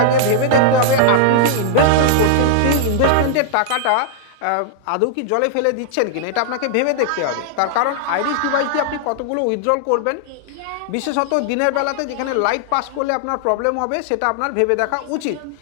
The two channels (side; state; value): both; different; correlation -0.01